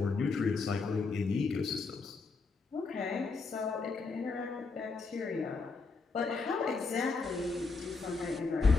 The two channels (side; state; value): right; quieter; 4.3 dB